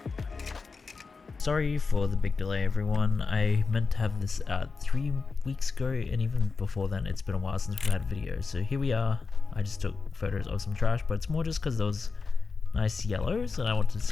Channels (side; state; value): right; quieter; 4.6 dB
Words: Sorry for the big delay, everyone. I meant to have this out 3 weeks ago, and even before then it's been a while since we've had videos. So here we are. I just took photos of some trash, but it's more just because those nice yellows and I wanted to